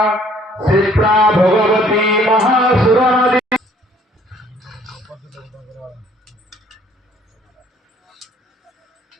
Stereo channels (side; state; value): both; normal; correlation 0.59